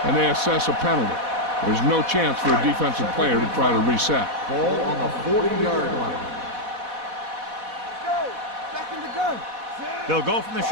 and they assess a penalty. There's no chance for a defensive player to try to reset. Ball on the 40-yard line. Back in the gun. They'll go from the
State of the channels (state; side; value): late; left; 4.1 ms